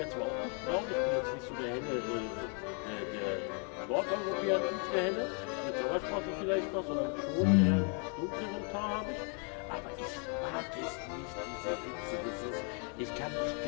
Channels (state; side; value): quieter; right; 39.3 dB